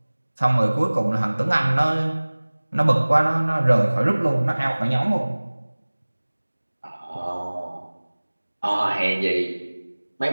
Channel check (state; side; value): inverted; both; correlation -1.00